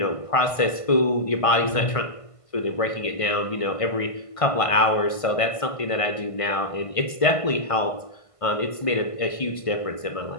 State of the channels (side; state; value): right; late; 1.5 ms